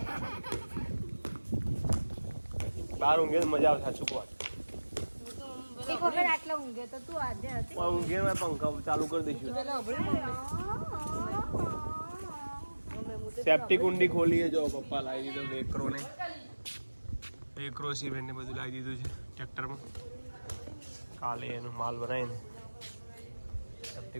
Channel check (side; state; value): both; inverted; correlation -1.00